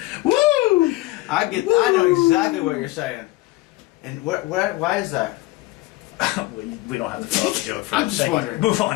Woo! I know exactly what you're saying. And why is that? We don't have to fill out the joke for I'm just Thank you. wondering. Move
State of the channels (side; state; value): right; quieter; 19.5 dB